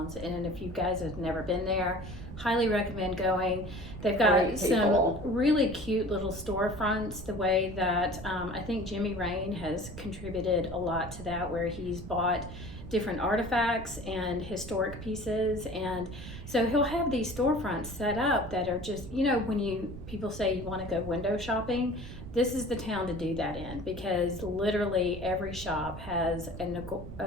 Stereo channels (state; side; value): noise; right; rumble, 11 dB below the sound